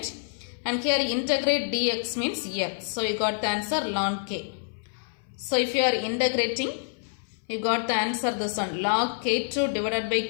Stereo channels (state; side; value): silent; right; 60 dB below the other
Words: And here integrate dx means x. So you got the answer ln k. So if you are integrating, you got the answer this one. Log k2 divided by